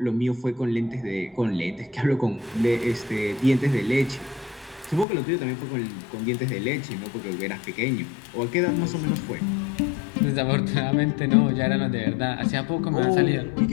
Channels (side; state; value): right; drops out; at 5.1 s